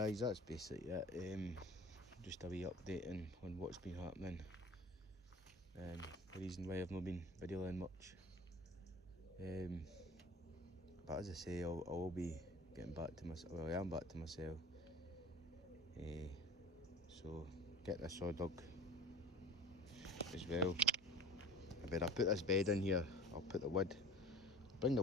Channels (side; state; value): both; normal; correlation 0.39